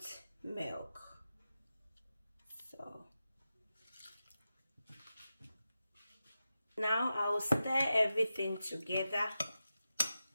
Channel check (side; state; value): both; inverted; correlation -0.91